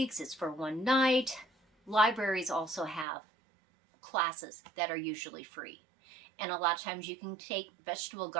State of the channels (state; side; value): drops out; left; at 3.1 s